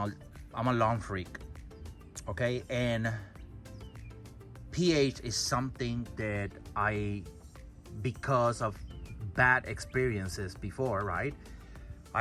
lawn freak, okay? And pH is something that because of bad experiences before, right,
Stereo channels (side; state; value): both; identical; correlation 1.00